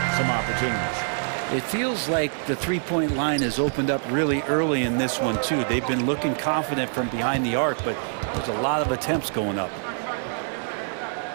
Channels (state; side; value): silent; left; digital silence